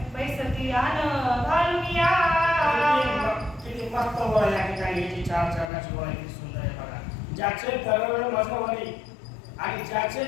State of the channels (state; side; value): drops out; right; at 5.7 s